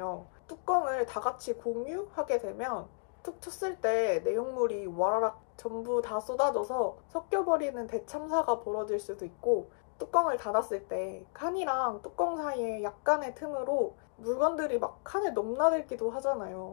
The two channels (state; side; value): silent; right; digital silence